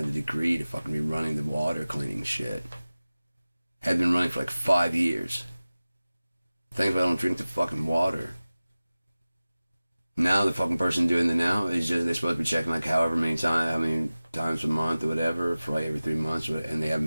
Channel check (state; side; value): inverted; both; correlation -0.97